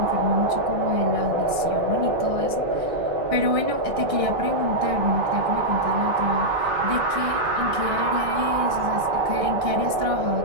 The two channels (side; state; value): left; late; 1.6 ms